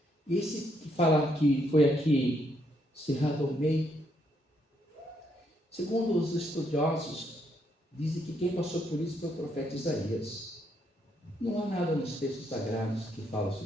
Esse que fala que foi aqui cerrado ao meio, segundo os estudiosos, dizem que quem passou por isso foi o profeta Isaías. Não há nada nos textos sagrados que fala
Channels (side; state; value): both; normal; correlation 0.75